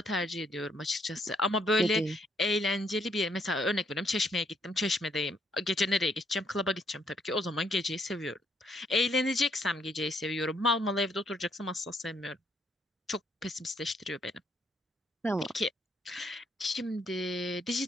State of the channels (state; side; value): normal; both; correlation 0.71